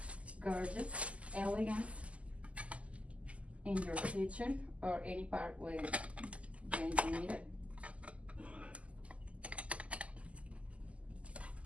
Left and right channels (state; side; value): late; left; 0.064 ms